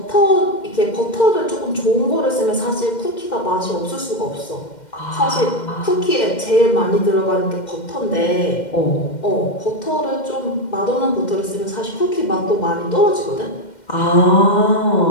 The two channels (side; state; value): right; late; 2.1 ms